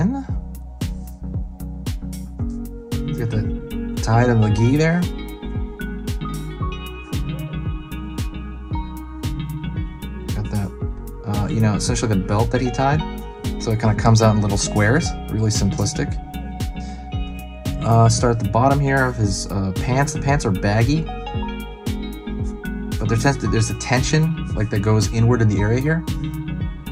Get the tie to the gi there. Essentially the belt that he tied, so it kind of comes out in little squares, really simplistic. Start at the bottom here of his pants. The pants are baggy, but there's a tension like that goes inward in the area here.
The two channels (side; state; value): both; identical; correlation 1.00